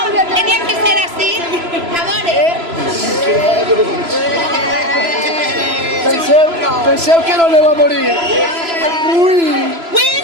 Tenía que ser así. Amores. Penseu que no le va a morir. Uy.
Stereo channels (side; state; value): left; late; 3.0 ms